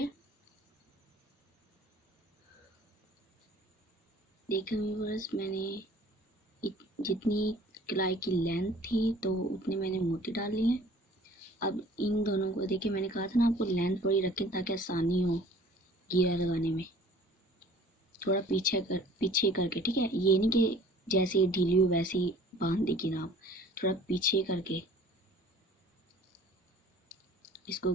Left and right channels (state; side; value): normal; both; correlation 0.50